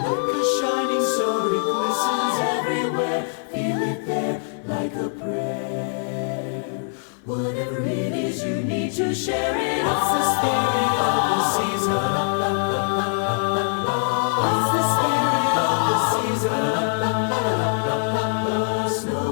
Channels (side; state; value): right; silent; 56 dB below the other